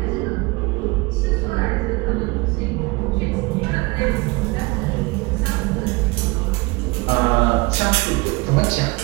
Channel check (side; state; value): left; quieter; 24.7 dB